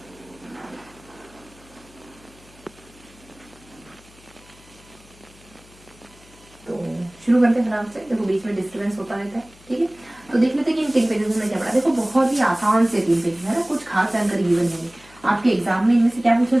शुरू करते हैं फटाफट से। देखो बीच में डिस्टर्बेंस होता रहता है, ठीक है। तो देख लेते हैं कि इन 3 पेजेस में क्या पढ़ा। देखो बहुत ही आसान से 3 पेजेस है ना, कुछ खास जानकारी गिवन है। आपके एग्जाम में इनमें से क्या पूछा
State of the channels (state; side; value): noise; left; hum, 25 dB below the sound